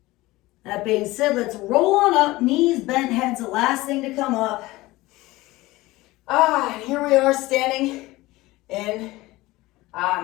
That being said, let's roll on up. Knees bent, head's the last thing to come up. And here we are standing in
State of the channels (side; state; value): right; quieter; 19.3 dB